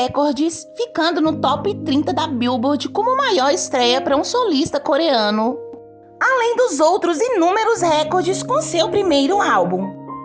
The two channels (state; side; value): identical; both; correlation 1.00